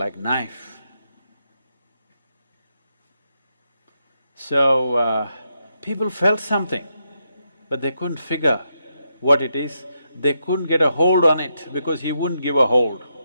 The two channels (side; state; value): both; inverted; correlation -0.82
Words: knife. So, people felt something, but they couldn't figure what it is. They couldn't get a hold on it because he wouldn't give a hold.